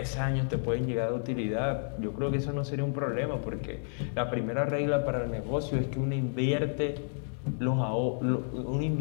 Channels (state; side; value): silent; right; digital silence